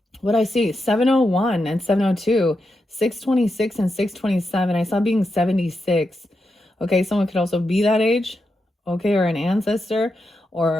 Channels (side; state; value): both; normal; correlation 0.86